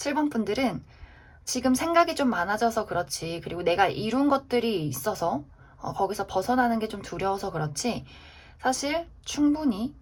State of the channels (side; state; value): both; identical; correlation 1.00